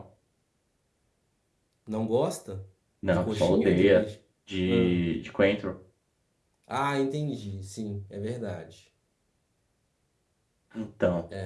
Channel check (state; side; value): identical; both; correlation 1.00